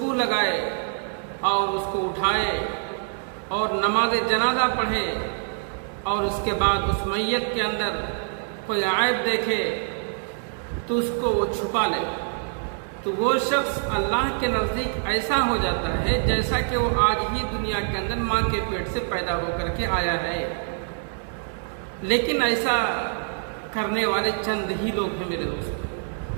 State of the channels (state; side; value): silent; left; 60 dB below the other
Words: لگائے اور اس کو اٹھائے اور نماز جنازہ پڑھے اور اس کے بعد اس میت کے اندر کوئی عیب دیکھے تو اس کو وہ چھپا لے، تو وہ شخص اللہ کے نزدیک ایسا ہو جاتا ہے جیسا کہ وہ آج ہی دنیا کے اندر ماں کے پیٹ سے پیدا ہو کر کے آیا ہے۔ لیکن ایسا کرنے والے چند ہی لوگ ہیں میرے